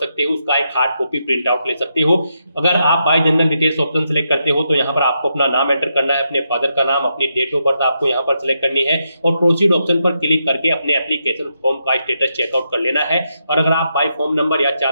हो, उसका एक हार्ड कॉपी प्रिंट आउट ले सकते हो। अगर आप bye general details option select करते हो तो यहाँ पर आपको अपना नाम एंटर करना है, अपने फादर का नाम, अपनी डेट ऑफ बर्थ आपको यहाँ पर सिलेक्ट करनी है और प्रोसीड ऑप्शन पर क्लिक करके अपने एप्लीकेशन फॉर्म का स्टेटस चेकआउट कर लेना है। और अगर आप बाय फॉर्म नंबर या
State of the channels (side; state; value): both; inverted; correlation -0.82